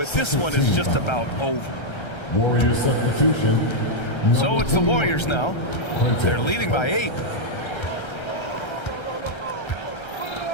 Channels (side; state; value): right; late; 1.3 ms